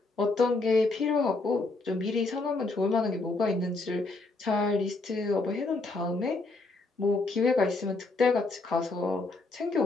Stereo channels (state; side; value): quieter; right; 3.4 dB